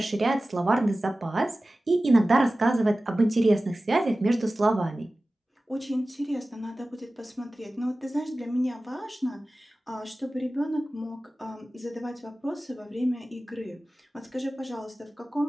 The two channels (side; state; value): both; normal; correlation 0.96